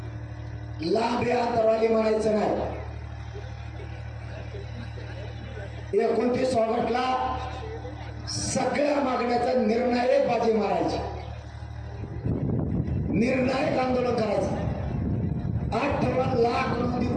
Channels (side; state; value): both; identical; correlation 1.00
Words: लांब अंतरवाली म्हणायचं नाही. एकोणतीस स्वागतला सगळ्या मागण्याचा निर्णायक बाजी मारायची, निर्णायक आंदोलन करायचं. 58 लाख